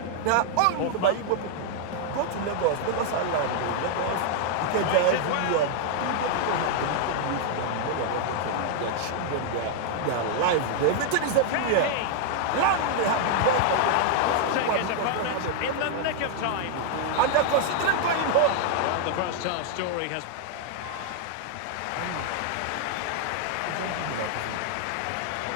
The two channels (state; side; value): different; both; correlation 0.00